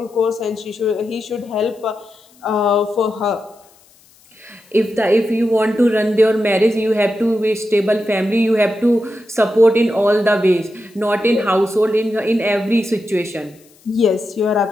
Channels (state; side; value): noise; left; hiss, 30 dB below the sound